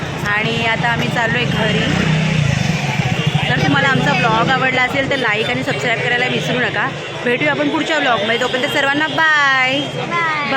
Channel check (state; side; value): identical; both; correlation 1.00